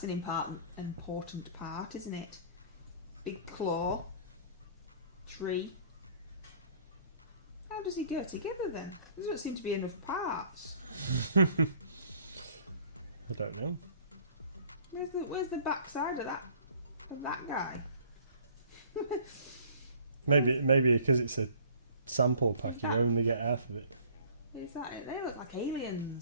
an important part, isn't it? Big claw. Tree. How does he go together then? There doesn't seem to be enough parts. I don't know. Where's the back side of that guy? Maybe because it's a sample pack, you only get half of it. Is that it? They look like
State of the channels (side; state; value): both; inverted; correlation -0.53